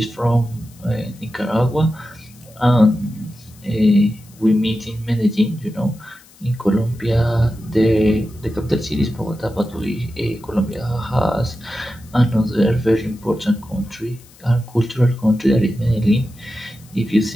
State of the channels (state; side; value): noise; left; hiss, 26 dB below the sound